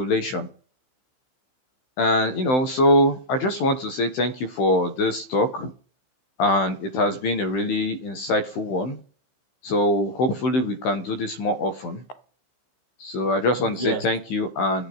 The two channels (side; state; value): right; late; 16 ms